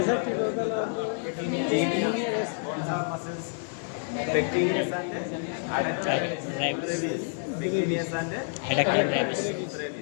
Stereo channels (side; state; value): right; silent; 59 dB below the other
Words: कौन सा muscles? pectineus and adductor brevis, pectineus and Adductor